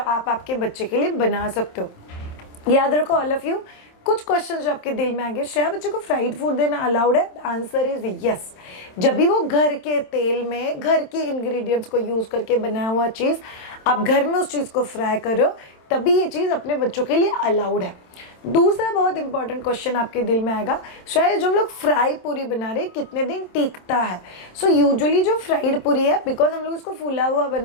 आपके बच्चे के लिए बना सकते हो। याद रखो ऑल ऑफ यू, कुछ क्वेश्चन जो आपके दिल में आएंगे, श्रेया बच्चे को फ्राइड फूड देना अलाउड है? Answer is yes. जब भी वो घर के तेल में घर के इंग्रेडिएंट्स को यूज करके बनाया हुआ चीज आप घर में उस चीज को फ्राई करो, तभी ये चीज अपने बच्चों के लिए अलाउड है। दूसरा बहुत इंपॉर्टेंट क्वेश्चन आपके दिल में आएगा, शायद जो हम लोग फ्राई पूरी बना रहे हैं कितने दिन टिकता है? सो यूजुअली जो फ्राइड पूरी है, बिकॉज हम लोग इसको फूला हुआ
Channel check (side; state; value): right; late; 27 ms